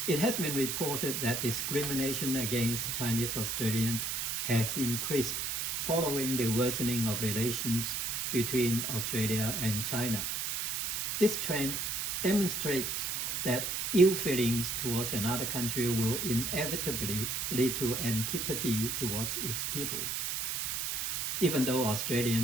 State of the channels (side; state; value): right; noise; hiss, 1 dB below the sound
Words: It has been reported that discrimination against Chinese Australians has increased following the worsening of relations between Australia and China. This trend demonstrates that ill feelings towards another country will inevitably lead to antipathy towards its people. Even though